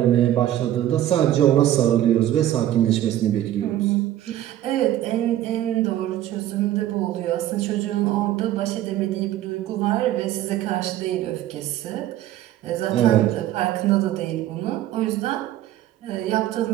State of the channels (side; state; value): left; quieter; 12.9 dB